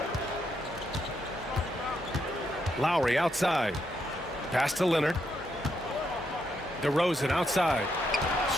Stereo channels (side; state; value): both; normal; correlation 0.79